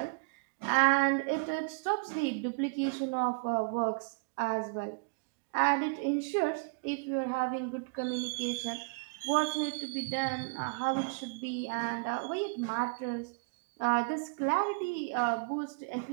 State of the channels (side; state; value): left; quieter; 32.8 dB